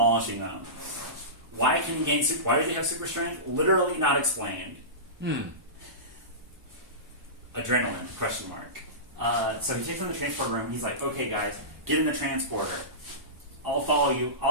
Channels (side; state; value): left; late; 1.0 ms